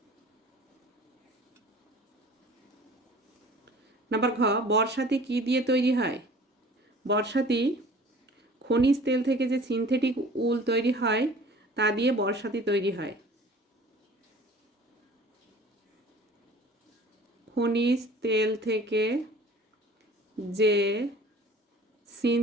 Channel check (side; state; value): both; normal; correlation 0.47